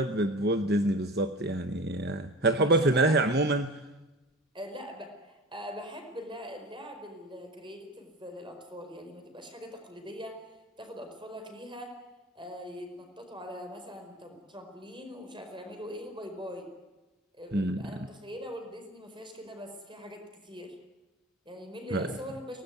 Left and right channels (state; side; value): normal; both; correlation 0.35